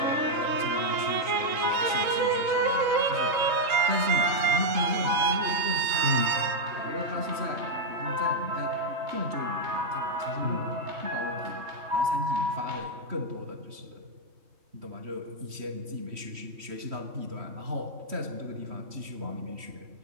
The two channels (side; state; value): left; late; 3.1 ms